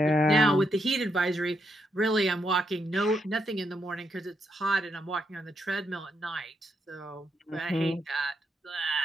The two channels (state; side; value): normal; both; correlation 0.80